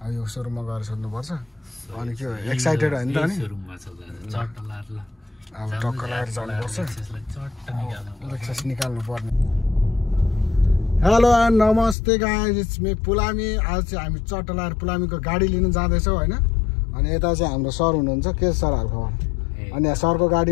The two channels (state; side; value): drops out; right; at 12.0 s